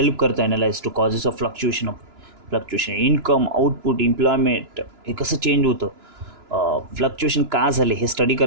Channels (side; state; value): left; late; 2.9 ms